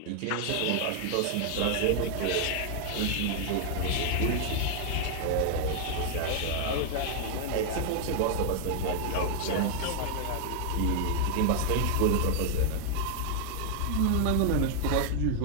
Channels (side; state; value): both; different; correlation 0.00